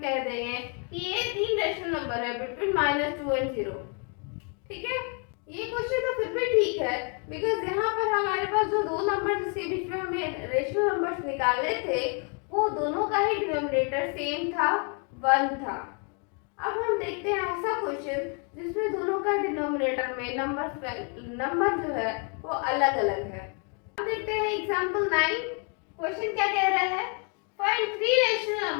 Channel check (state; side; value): quieter; right; 38.4 dB